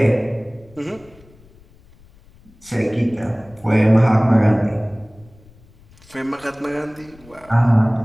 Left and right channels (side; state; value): left; noise; rumble, 26 dB below the sound